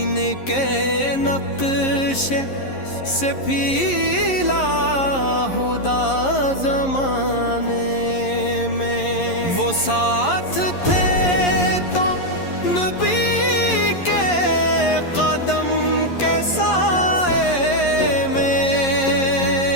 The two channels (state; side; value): late; right; 11 ms